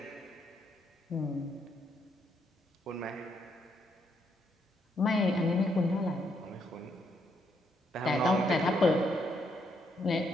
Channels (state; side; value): normal; both; correlation 0.75